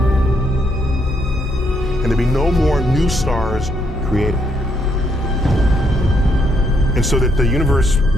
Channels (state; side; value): normal; both; correlation 0.74